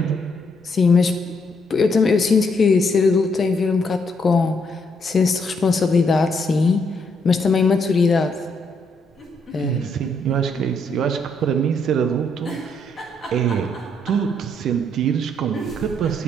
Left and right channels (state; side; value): normal; both; correlation 0.74